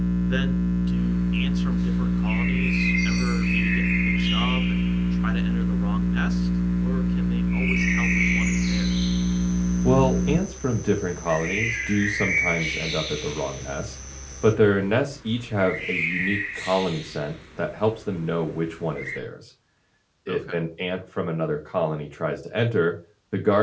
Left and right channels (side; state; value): both; identical; correlation 1.00